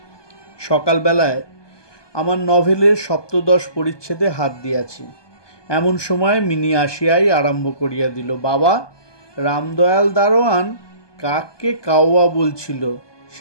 সকালবেলায় আমার নভেলের 7 পরিচ্ছেদে হাত দিয়াছি, এমন সময় মিনি আসিয়াই আরম্ভ করিয়া দিল, বাবা, রামদয়াল দারোয়ান কাককে কাউয়া বলছিল,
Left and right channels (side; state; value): right; late; 1.2 ms